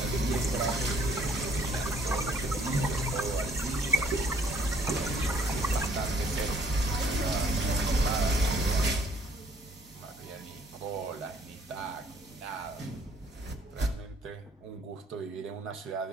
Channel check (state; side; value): normal; both; correlation 0.61